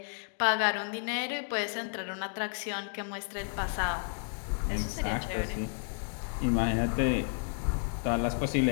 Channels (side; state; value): right; silent; 57 dB below the other